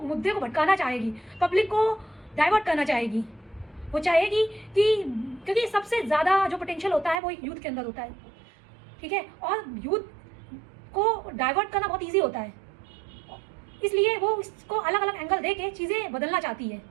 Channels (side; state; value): left; drops out; at 7.2 s